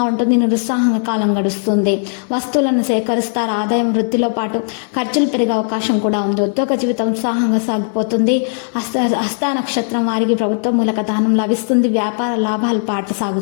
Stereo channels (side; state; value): right; silent; 56 dB below the other